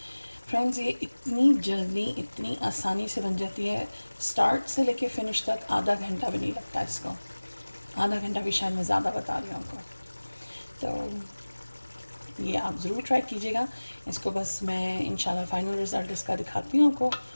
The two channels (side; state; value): both; inverted; correlation -1.00